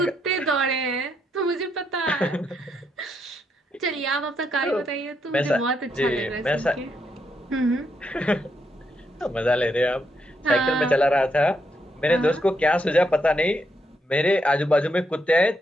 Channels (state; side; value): normal; both; correlation 0.78